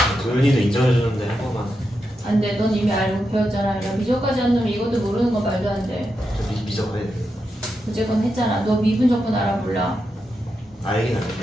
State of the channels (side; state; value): both; normal; correlation 0.86